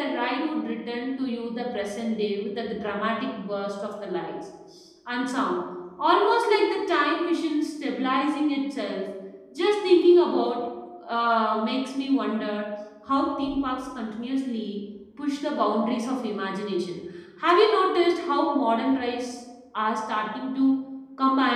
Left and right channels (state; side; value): identical; both; correlation 1.00